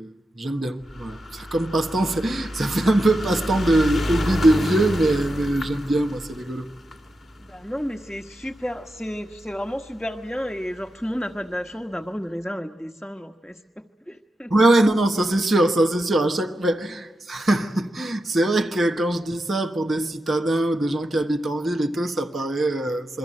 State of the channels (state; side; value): normal; both; correlation 0.88